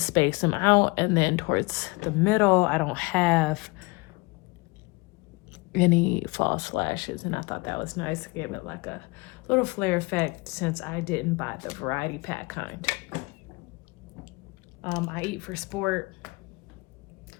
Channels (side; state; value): right; quieter; 26.5 dB